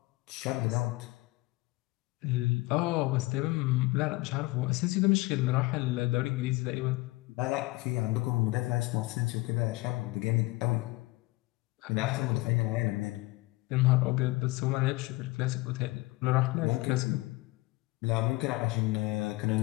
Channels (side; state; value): right; quieter; 21.9 dB